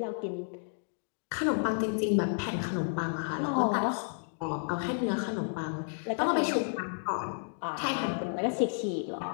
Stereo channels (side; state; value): right; silent; digital silence